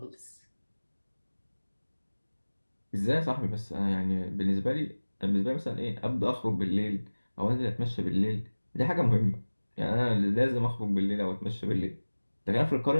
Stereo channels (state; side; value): inverted; both; correlation -1.00